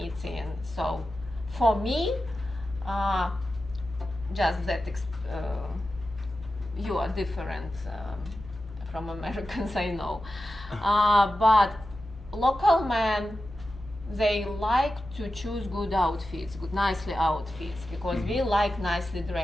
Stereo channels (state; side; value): normal; both; correlation 0.92